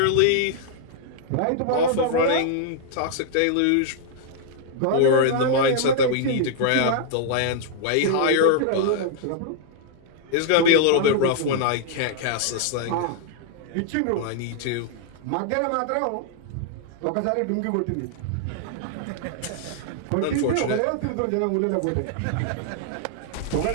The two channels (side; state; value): both; different; correlation -0.01